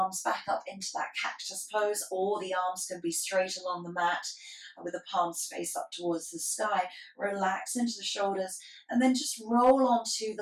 back up into that cactus pose, or the arms can be straight along the mat with the palms face up towards the sky. Relax into the shoulders and then just roll onto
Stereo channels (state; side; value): identical; both; correlation 1.00